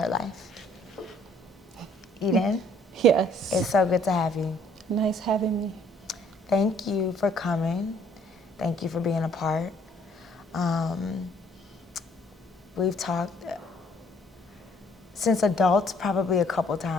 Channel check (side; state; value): both; normal; correlation 0.62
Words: life. Eden? Yes. It's so good to have you. Nice having me. Thank you for coming. Thank you for being a part. We've talked since adults probably a couple